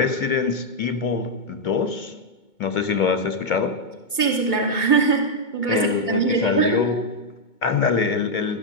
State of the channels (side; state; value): right; late; 2.2 ms